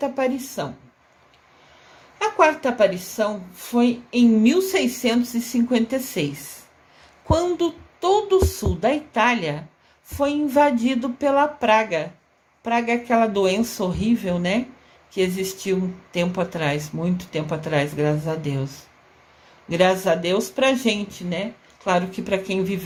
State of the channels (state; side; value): identical; both; correlation 1.00